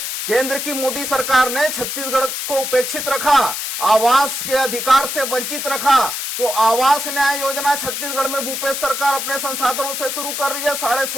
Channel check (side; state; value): left; noise; hiss, 4 dB below the sound